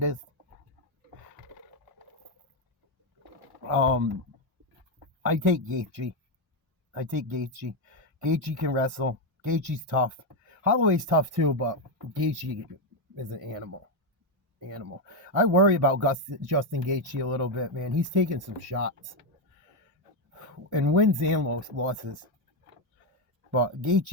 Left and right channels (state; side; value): normal; both; correlation 0.06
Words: I take Gaethje. Gaethje can wrestle. Gaethje's tough. Holloway's tough too, but Gaethje is an animal. I worry about Justin Gaethje a little bit, man. He's taking some shots. And wins and losses. But